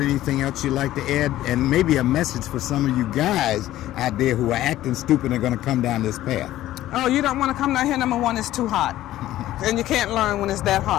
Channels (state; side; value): quieter; right; 14.3 dB